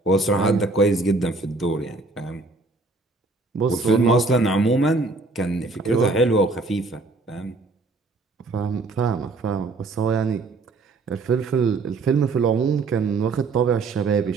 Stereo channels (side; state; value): left; quieter; 3.5 dB